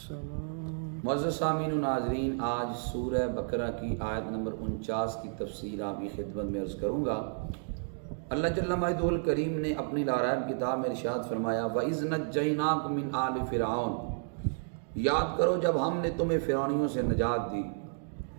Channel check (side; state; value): left; silent; digital silence